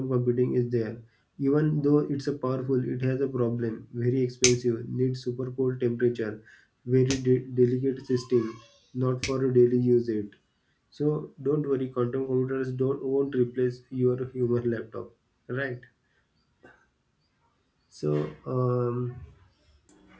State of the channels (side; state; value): both; identical; correlation 1.00